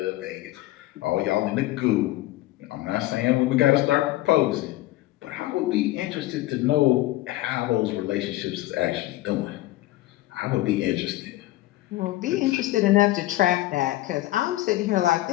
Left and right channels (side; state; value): right; quieter; 16.9 dB